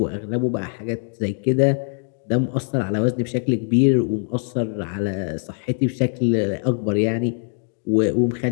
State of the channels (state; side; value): silent; right; 55 dB below the other